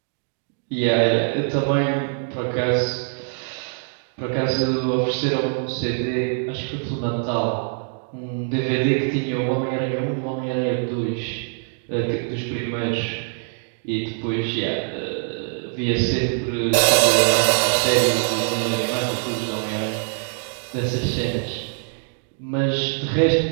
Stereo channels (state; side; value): silent; left; 57 dB below the other